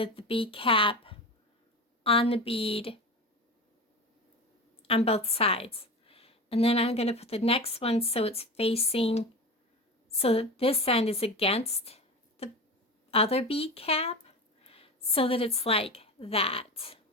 the bead cap on the bead on both sides. And then I'm going to put the next one so it's facing, so that this end is against the other bead cap, so that it's like that.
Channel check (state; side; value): normal; both; correlation 0.27